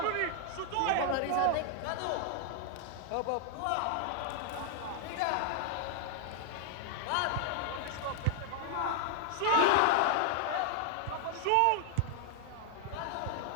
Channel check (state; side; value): different; both; correlation 0.00